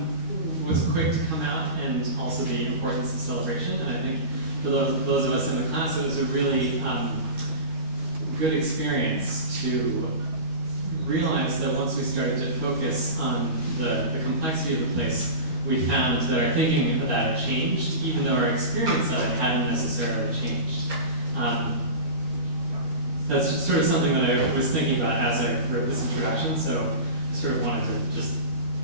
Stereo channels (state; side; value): late; left; 12 ms